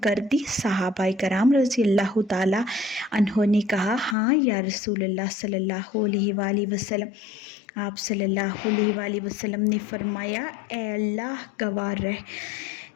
کر دی؟ صحابہ کرام رضی اللہ تعالیٰ عنہ نے کہا ہاں یا رسول اللہ صلی اللہ علیہ وآلہ وسلم۔ آپ صلی اللہ علیہ وآلہ وسلم نے فرمایا اے اللہ گواہ رہ،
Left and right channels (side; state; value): right; drops out; at 4.2 s